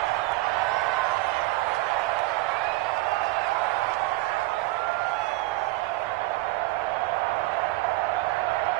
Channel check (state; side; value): quieter; left; 20.1 dB